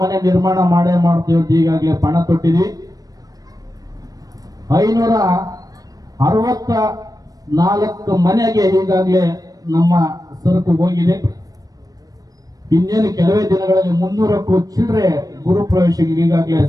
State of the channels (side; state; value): left; late; 0.18 ms